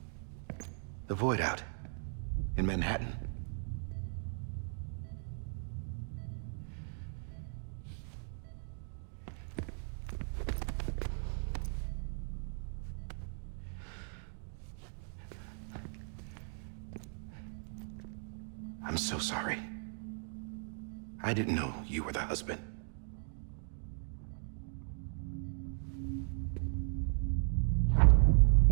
The Void out. In Manhattan. I'm so sorry. I didn't know you were the husband.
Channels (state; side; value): silent; left; 53 dB below the other